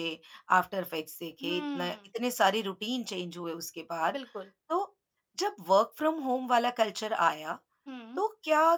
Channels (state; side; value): identical; both; correlation 1.00